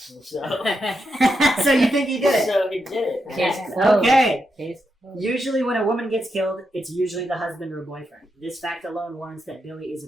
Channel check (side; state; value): both; normal; correlation 0.84